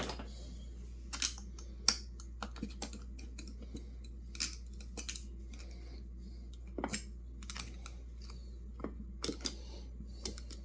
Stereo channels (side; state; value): both; identical; correlation 1.00